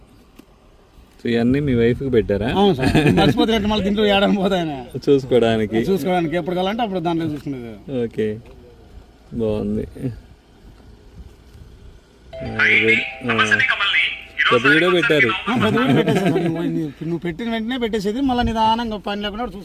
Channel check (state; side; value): identical; both; correlation 1.00